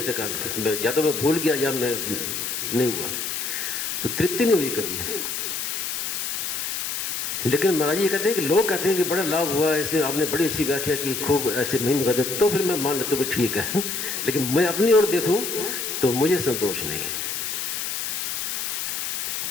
सका, या तो मैं भूल गया या मैं नहीं हुआ, तो तृप्ति नहीं हुई कभी। लेकिन महाराज जी कहते हैं कि लोग कहते हैं कि बड़ा लाभ हुआ, ऐसे आपने बड़ी अच्छी व्याख्या की, खूब ऐसे महिमा कहते, तो फिर मैं मान लेता हूँ ठीक है। लेकिन मैं अपनी ओर देखूँ तो मुझे संतोष नहीं है।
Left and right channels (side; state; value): left; noise; hiss, 3 dB below the sound